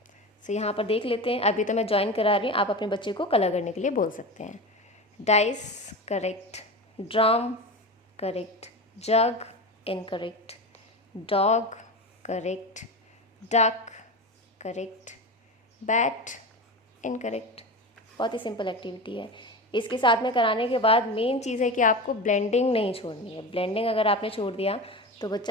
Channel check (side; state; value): both; normal; correlation 0.25